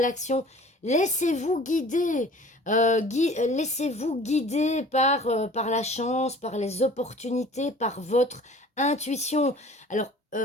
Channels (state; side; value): normal; both; correlation 0.46